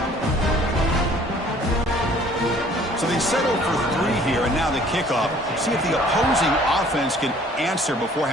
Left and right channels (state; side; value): normal; both; correlation 0.55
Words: So they settle for 3 here, and now the kickoff. See if the opposing offense can answer before